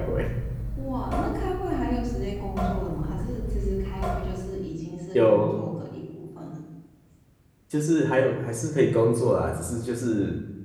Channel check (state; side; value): identical; both; correlation 1.00